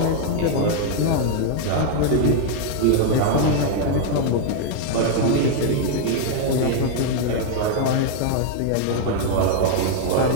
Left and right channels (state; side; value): different; both; correlation 0.00